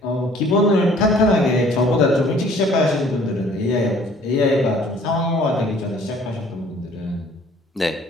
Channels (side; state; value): both; normal; correlation 0.55